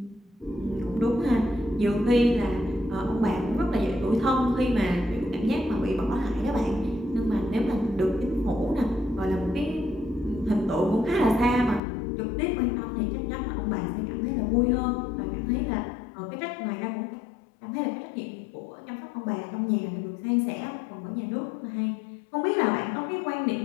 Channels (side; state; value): right; drops out; at 11.8 s